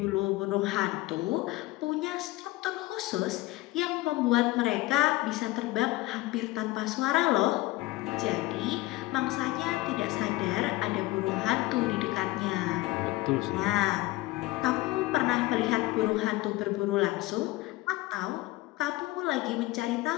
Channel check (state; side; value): quieter; right; 19.0 dB